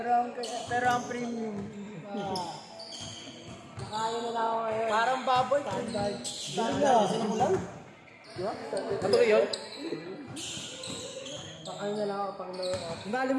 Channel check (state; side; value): identical; both; correlation 1.00